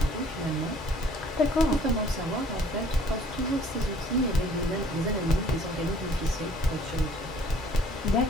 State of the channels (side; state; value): both; normal; correlation 0.56